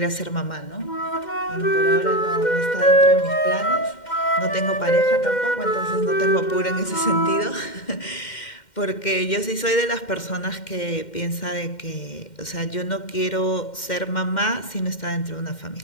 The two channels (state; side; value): late; right; 2.1 ms